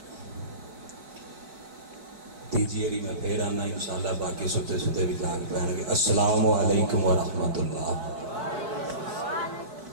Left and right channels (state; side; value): late; left; 4.4 ms